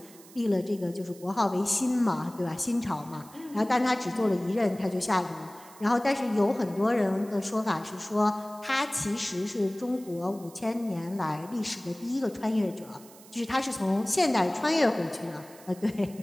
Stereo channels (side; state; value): right; noise; hiss, 22 dB below the sound